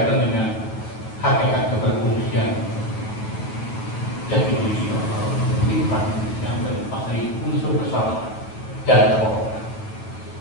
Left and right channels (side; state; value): right; late; 8.9 ms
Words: dengan hakikat keberfungsian jati diri sifat yang terlepas dari unsur kesalahan dan kebohongan.